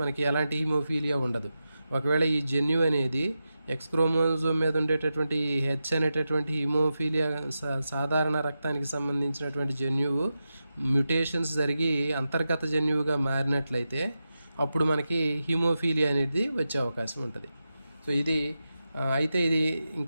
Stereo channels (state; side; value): inverted; both; correlation -0.91